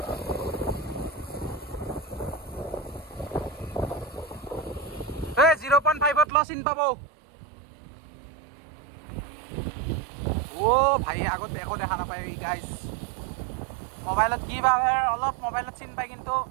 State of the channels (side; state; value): left; drops out; at 6.2 s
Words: লাইভত ল চিন পাব ও ভাই আগত একো দেখা নাপায় গাইজ মোবাইলত কি বা অলপ মোবাইলত চিন পায় কিন্তু